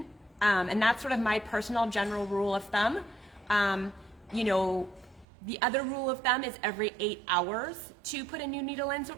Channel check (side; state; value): left; drops out; at 5.2 s